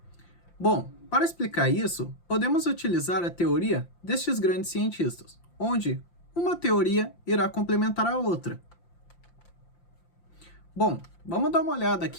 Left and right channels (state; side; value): late; right; 5.8 ms